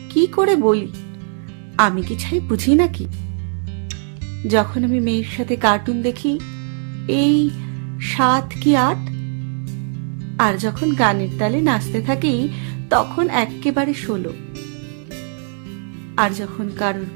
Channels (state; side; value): silent; left; 65 dB below the other